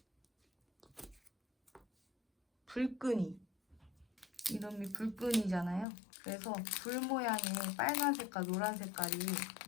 불끈이. 이름이 불끈이잖아요. 그래서 불 모양의 빨간 색깔, 노란 색깔이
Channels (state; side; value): drops out; right; at 5.9 s